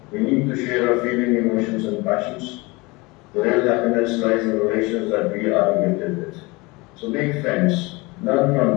We need to share our feeling, emotions, and passions. The real happiness lies in the relations that we are gifted with. So make friends, learn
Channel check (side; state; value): right; quieter; 24.6 dB